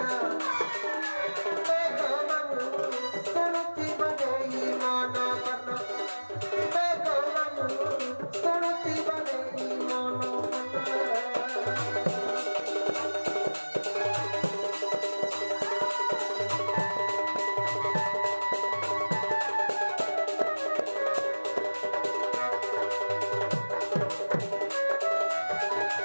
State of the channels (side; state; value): both; inverted; correlation -1.00